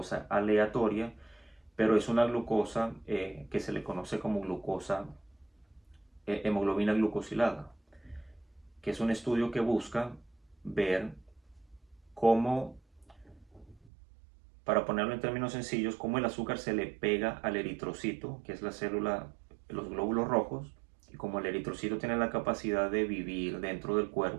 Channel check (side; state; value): left; drops out; at 13.9 s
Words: aleatoria, pero es una glucosa que se le conoce como glucosa, hemoglobina glucosilada, que es un estudio que busca ver cómo, para ponerlo en términos sencillos, cómo el azúcar se le pega al eritrocito, que es la célula, los glóbulos rojos, y como el eritrocito tiene la capacidad de vivir dentro del